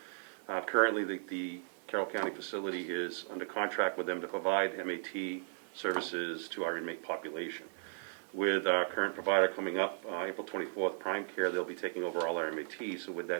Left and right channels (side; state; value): left; silent; digital silence